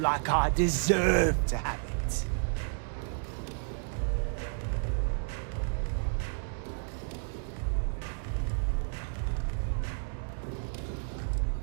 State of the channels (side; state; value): left; silent; digital silence